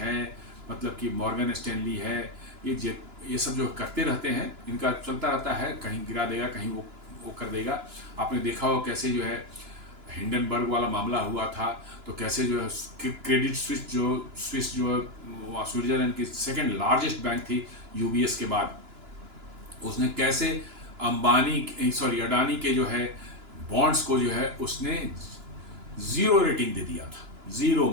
मतलब कि मॉर्गन स्टैनली है, ये सब जो करते रहते हैं, इनका चलता रहता है, कहीं गिरा देगा, कहीं वो कर देगा। आपने देखा हो कैसे जो है हिंडनबर्ग वाला मामला हुआ था, तो कैसे जो है क्रेडिट स्विस जो स्विट्जरलैंड की सेकंड लार्जेस्ट बैंक थी यूबीएस के बाद, उसने कैसे अडानी के जो है बॉन्ड्स को जो है उसने 0 रेटिंग दे दिया था। 0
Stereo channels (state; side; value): late; left; 2.9 ms